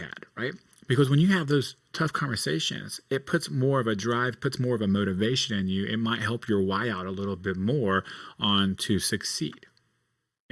right? Because when you have those tough conversations, it puts more of a drive, puts more of a motivation in you. It might help your why out a little bit more on to succeed.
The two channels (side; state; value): both; identical; correlation 1.00